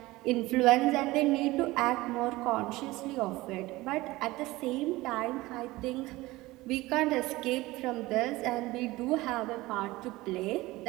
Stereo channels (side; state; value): left; quieter; 19.5 dB